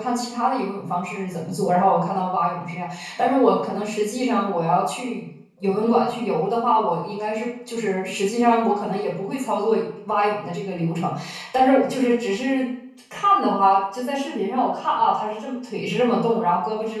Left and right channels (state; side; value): identical; both; correlation 1.00